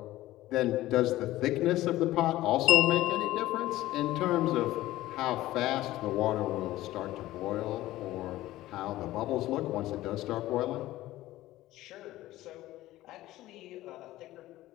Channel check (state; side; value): quieter; right; 16.0 dB